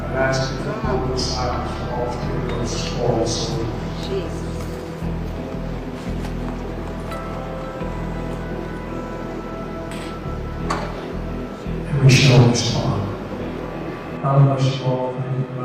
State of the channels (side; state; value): both; identical; correlation 1.00